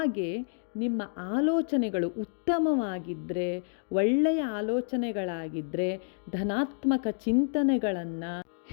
ನಿಮ್ಮ ಆಲೋಚನೆಗಳು ಉತ್ತಮವಾಗಿದ್ದರೆ, ಒಳ್ಳೆಯ ಆಲೋಚನೆಗಳಾಗಿದ್ದರೆ, ಧನಾತ್ಮಕ ಚಿಂತನೆಗಳನ್ನು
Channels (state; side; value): silent; right; digital silence